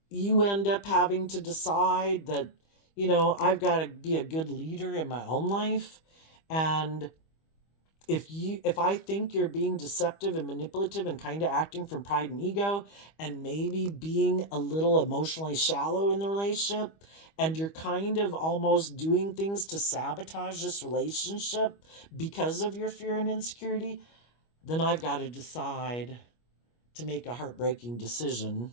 you end up having to decide that, I've got to be a good leader in my own life. And if I think you're being deceptive and manipulative and kind of acting from pride and ego and maybe being a little emotionally shallow in the relationship, and you're kind of almost doing things to sabotage this relationship because of your fear and insecurity, then I've got to decide to make a heartbreaking decision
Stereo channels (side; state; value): right; late; 25 ms